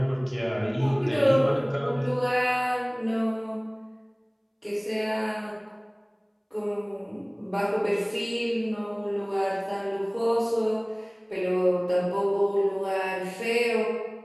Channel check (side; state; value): both; identical; correlation 1.00